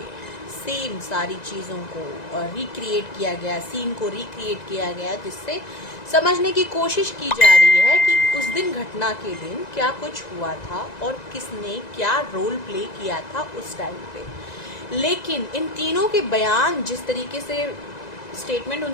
सेम सारी चीज़ों को रिक्रिएट किया गया, सीन को रिक्रिएट किया गया, जिससे समझने की कोशिश की जा रही है कि उस दिन घटना के दिन क्या कुछ हुआ था और किसने क्या रोल प्ले किया था उस टाइम पे। लेकिन इन तीनों के बयान, जिस तरीके से स्टेटमेंट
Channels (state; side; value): late; right; 1.9 ms